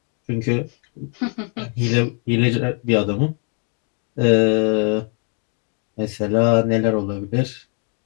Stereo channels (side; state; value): right; quieter; 39.5 dB